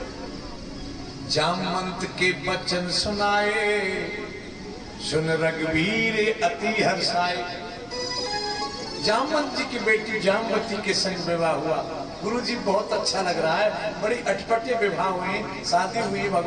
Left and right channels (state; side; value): identical; both; correlation 1.00